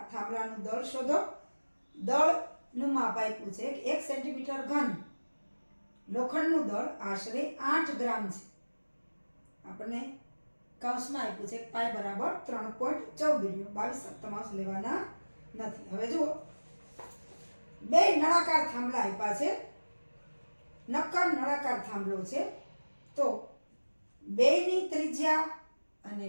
થાંભલાનું દળ શોધો. દળનું માપ આપ્યું છે કે 1 સેન્ટીમીટર ઘન લોખંડનું દળ આશરે 8 ગ્રામ છે. આપણને કૌંસમાં આપ્યું છે પાઈ બરાબર 3.14 લ્યો. 22 સપ્તમાંશ લેવાના નથી. હવે જુઓ, બે નળાકાર થાંભલા આપ્યા છે, નક્કર નળાકાર થાંભલો છે. તો બેયની ત્રિજ્યા અને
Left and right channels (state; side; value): inverted; both; correlation -1.00